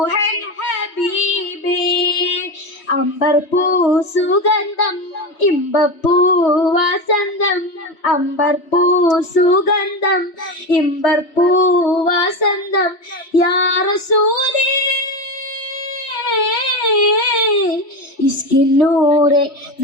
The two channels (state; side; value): late; right; 3.1 ms